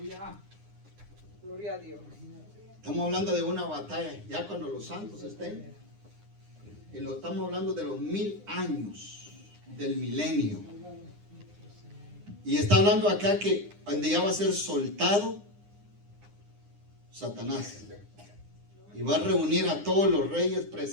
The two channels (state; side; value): late; left; 9.8 ms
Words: Gloria a Dios. Estamos hablando de una batalla, ya cuando los santos estén. Y lo estamos hablando de los 1000 años del milenio. Y está hablando acá que donde ya va a ser soltado Satanás. Y va a reunir a todos los reyes,